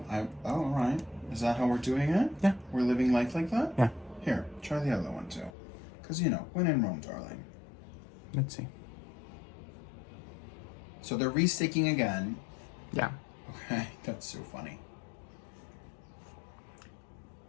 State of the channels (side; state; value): right; drops out; at 5.5 s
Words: all right. Is that how we're doing it? Yeah. We're living life like that? Yeah. Here, try the other one too. Because, you know, when in Rome, darling. Let's see. So they're re-sticking again. Yeah. Okay, that's so funny.